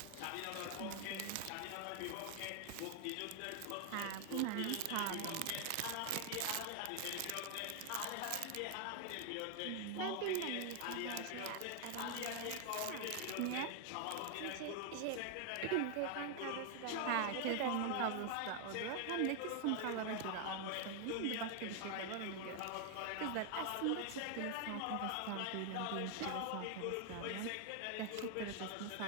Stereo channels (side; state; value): both; different; correlation 0.00